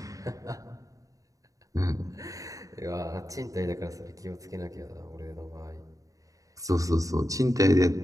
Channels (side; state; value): left; late; 0.16 ms